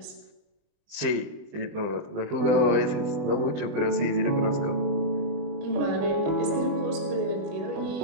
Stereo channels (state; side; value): late; left; 20 ms